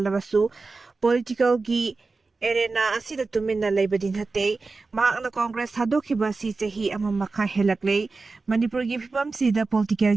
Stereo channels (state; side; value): quieter; left; 3.9 dB